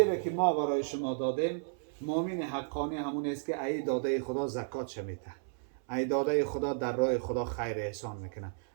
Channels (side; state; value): left; silent; 56 dB below the other